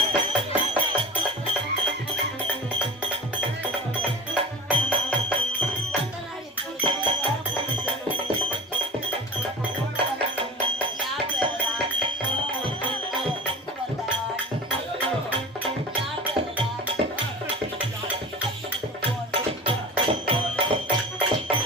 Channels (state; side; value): normal; both; correlation 0.36